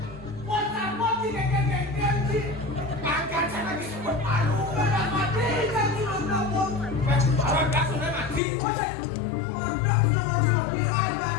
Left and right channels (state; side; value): drops out; right; at 8.4 s